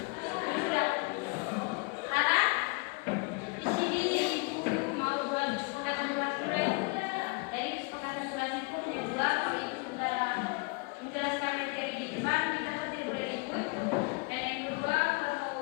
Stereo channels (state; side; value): quieter; right; 30.0 dB